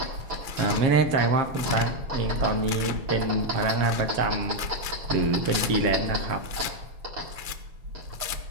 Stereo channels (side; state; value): left; late; 6.1 ms